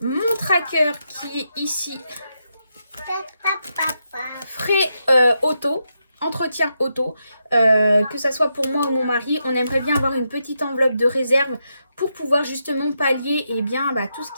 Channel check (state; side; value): inverted; both; correlation -0.83